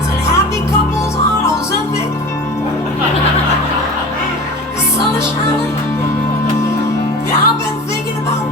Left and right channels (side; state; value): both; normal; correlation 0.36